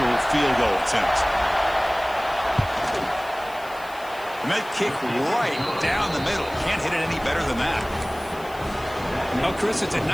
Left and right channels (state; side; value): noise; left; hiss, 21 dB below the sound